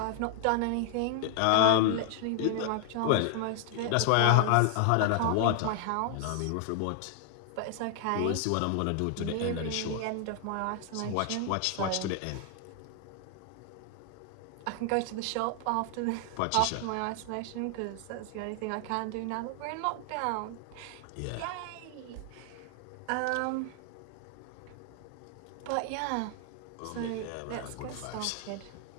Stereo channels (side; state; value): both; different; correlation 0.00